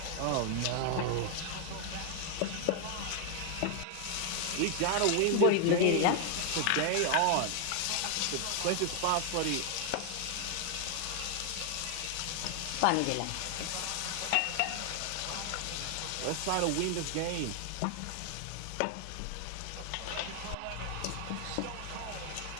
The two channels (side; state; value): both; different; correlation 0.00